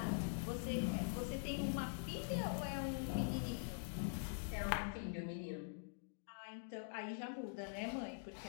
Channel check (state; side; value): silent; right; digital silence